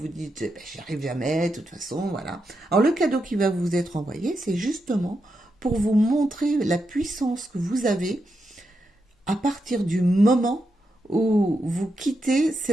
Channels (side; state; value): both; normal; correlation 0.85